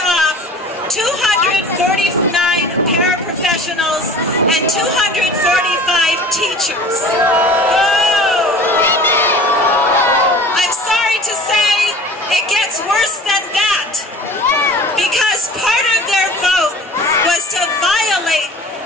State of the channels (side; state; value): both; normal; correlation 0.42